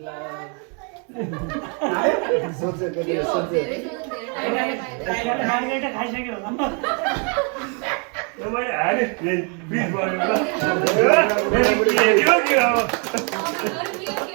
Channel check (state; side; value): quieter; left; 37.6 dB